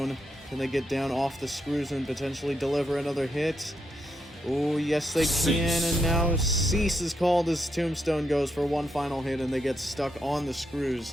can they get down off the screws and potentially deliver another hit? Oh, yes they can, and now Cease is called as Tombstone goes for one final hit, and they get stuck on the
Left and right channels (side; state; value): both; normal; correlation 0.81